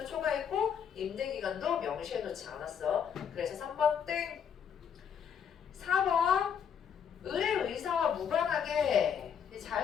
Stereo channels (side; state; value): right; quieter; 7.8 dB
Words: 초과했고 임대기간도 명시해놓지 않았어. 그래서 3번 땡. 4번 을의 의사와 무관하게